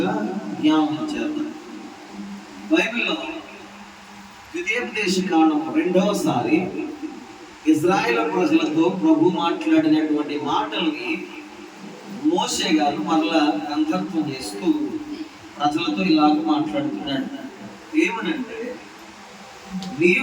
జ్ఞాపకం చేద్దాం. బైబిల్లో ద్వితీయోపదేశ కాండం రెండవసారి ఇజ్రాయేల్ ప్రజలతో ప్రభు మాట్లాడినటువంటి మాటల్ని మోషే గారు మరలా గ్రంథత్వం చేస్తూ ప్రజలతో ఇలాగ మాట్లాడుతున్నాడు. ఏమనంటే,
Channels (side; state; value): both; identical; correlation 1.00